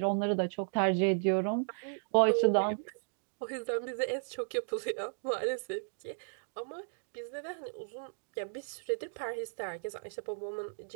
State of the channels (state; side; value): silent; left; digital silence